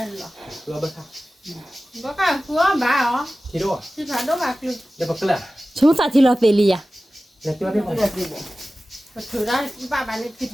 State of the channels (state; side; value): normal; both; correlation 0.96